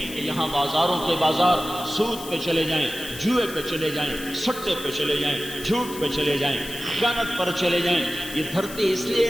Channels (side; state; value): left; noise; hiss, 13 dB below the sound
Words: کہ یہاں بازاروں کے بازار سود پہ چلے جائیں، جوئے پہ چلے جائیں، سٹے پہ چلے جائیں، جھوٹ پہ چلے جائیں، خیانت پر چلے جائیں۔ یہ دھرتی اس